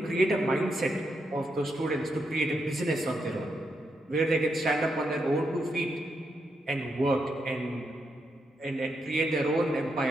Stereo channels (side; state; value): both; normal; correlation 0.82